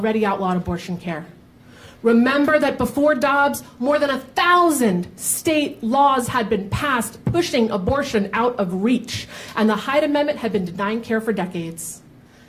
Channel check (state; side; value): identical; both; correlation 1.00